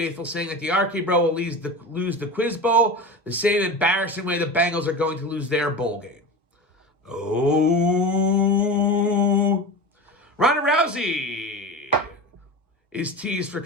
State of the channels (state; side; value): normal; both; correlation 0.28